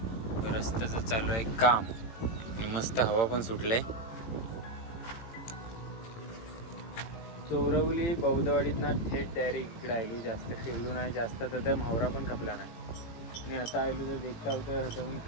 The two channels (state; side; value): late; right; 18 ms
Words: रस्त्याचं चालू आहे काम आणि मस्त हवा पण सुटलंय. चोरवली बौद्धवाडीतनं थेट डायरेक्ट इकडे आलो. जास्त फिरलो नाही, जास्त तर म्हावरा पण खपला नाही. आणि आता आलो तर देखता होतं हातावरून